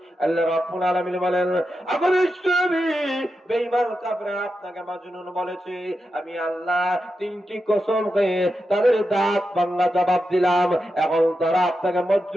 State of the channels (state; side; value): normal; both; correlation 0.88